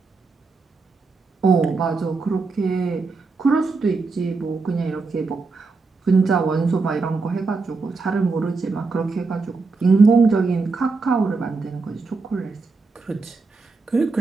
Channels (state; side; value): quieter; left; 4.1 dB